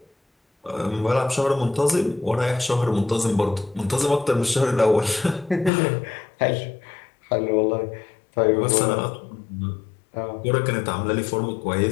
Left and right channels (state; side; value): drops out; right; at 5.7 s